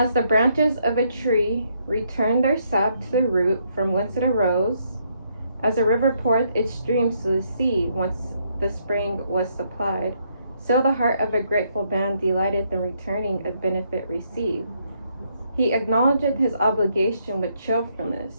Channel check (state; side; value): inverted; both; correlation -0.73